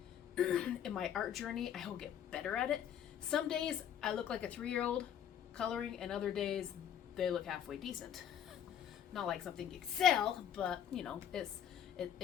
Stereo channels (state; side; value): quieter; right; 9.4 dB